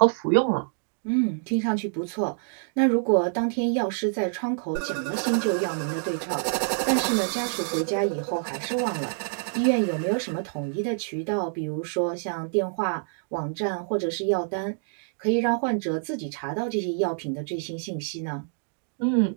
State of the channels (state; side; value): silent; left; digital silence